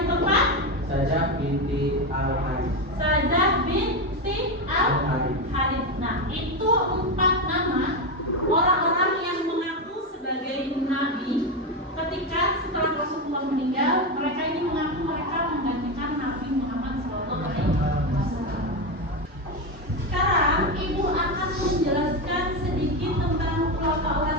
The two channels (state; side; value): normal; both; correlation 0.12